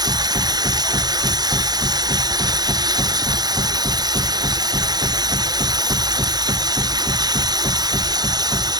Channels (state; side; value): late; left; 0.19 ms